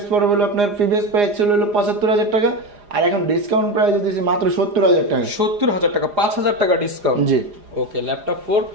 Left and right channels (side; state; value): left; late; 4.9 ms